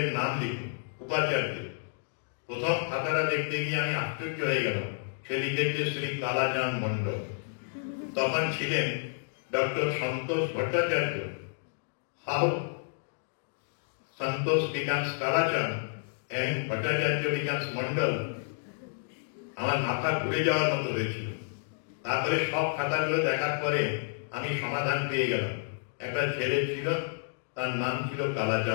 নাম লিখুন, উপাচার্য। প্রথম খাতাটা দেখতে গিয়ে আমি আশ্চর্য হয়ে গেলাম। সে লিখেছে শ্রী কালাচাঁদ মন্ডল। তখন ছিলেন doctor Santosh Bhattacharya. How Santosh becomes Kalachand and Bhattacharya becomes Mondal. আমার মাথা ঘুরে যাওয়ার মতো হয়েছিল। তারপরে সব খাতাগুলো দেখার পরে আমি সমাধান পেয়ে গেলাম। একটা ছেলে ছিল, তার নাম ছিল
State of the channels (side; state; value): right; silent; digital silence